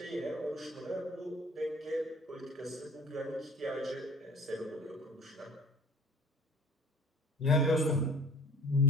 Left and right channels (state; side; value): normal; both; correlation 0.46